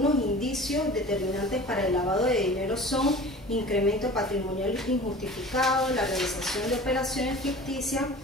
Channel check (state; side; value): normal; both; correlation 0.40